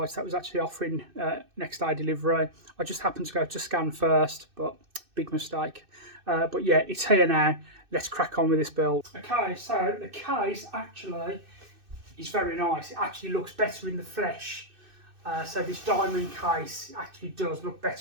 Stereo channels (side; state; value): left; late; 2.6 ms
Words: that was actually offering next day delivery. I just happened to go to Scan first, but big mistake. But yeah, it's here now. Let's crack on with this build. Okay, so the case actually is very nice. It actually looks better in the flesh. So this diamond case actually does look